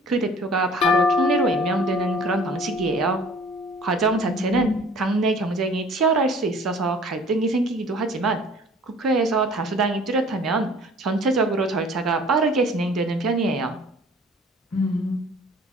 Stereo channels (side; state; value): both; normal; correlation 0.50